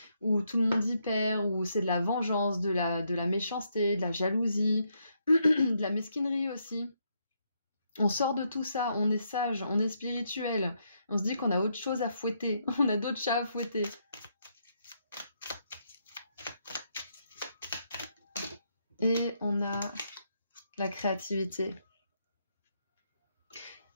où tout le monde y perd, où c'est de la vengeance, de la méchanceté, de la jalousie, de la mesquinerie aussi. On sort de tout ça, on est sage, on est spirituel. On se dit qu'on a autre chose à fouetter, on a d'autres chats à fouetter. Et on a la créativité.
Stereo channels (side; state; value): both; inverted; correlation -0.77